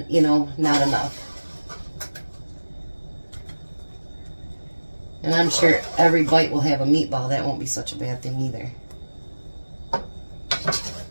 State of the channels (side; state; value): both; inverted; correlation -1.00